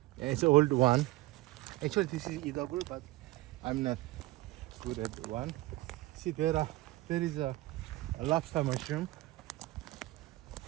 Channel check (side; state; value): left; quieter; 18.7 dB